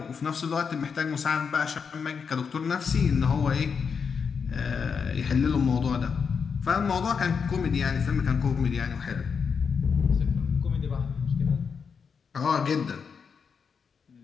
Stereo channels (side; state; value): right; quieter; 6.0 dB